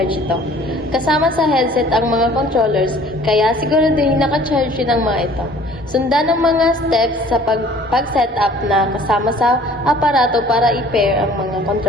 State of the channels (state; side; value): normal; both; correlation 0.52